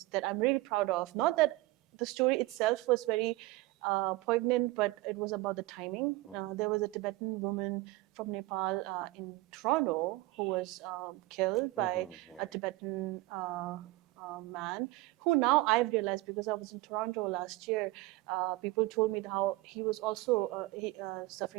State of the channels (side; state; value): left; quieter; 19.6 dB